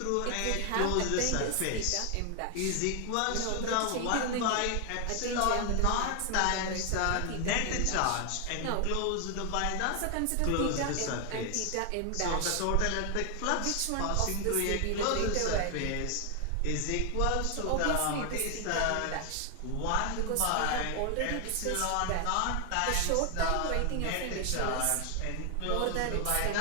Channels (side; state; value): both; different; correlation 0.00